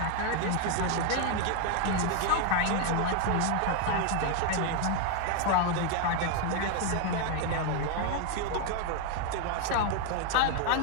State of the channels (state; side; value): different; both; correlation 0.01